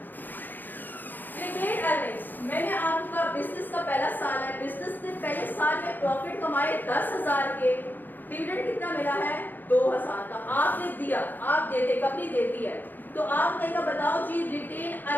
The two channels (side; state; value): right; late; 0.088 ms